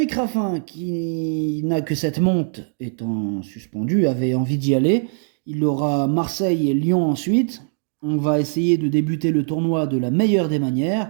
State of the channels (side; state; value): left; silent; 64 dB below the other